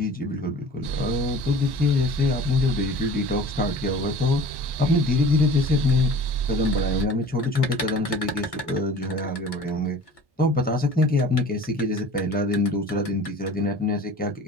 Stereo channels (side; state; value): left; late; 1.1 ms